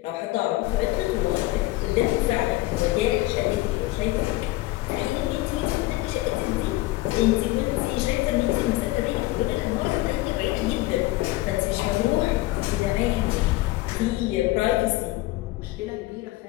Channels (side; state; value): right; quieter; 18.5 dB